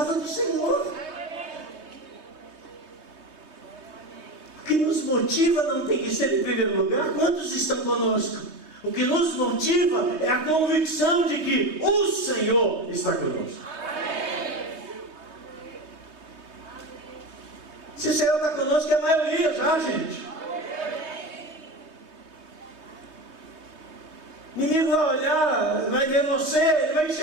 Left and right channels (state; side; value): late; left; 3.2 ms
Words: do Senhor. O que nos motiva não tem que ser em primeiro lugar quantos estão conosco. O que nos motiva é a convicção de que o Senhor está conosco. Se o Senhor está conosco, é a maioria já, gente. O inimigo vai olhar, vai ver você, ele vai